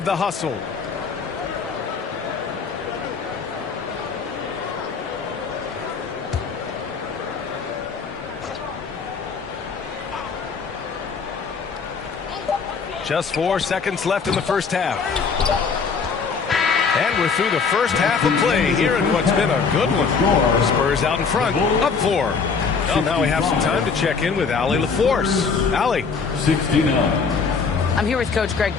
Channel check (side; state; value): right; quieter; 5.3 dB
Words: the hustle. Just 4 seconds left in the first half. And we're through the first half of play here in what's been a good one. Spurs out in front, up 4. Well, now we have some time to check in with Allie LaForce. Allie. 69. I'm here with Coach Greg